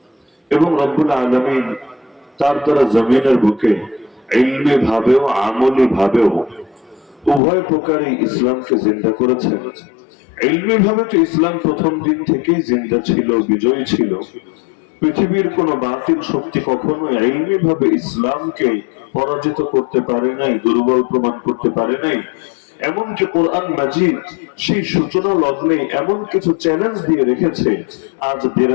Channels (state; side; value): drops out; right; at 7.4 s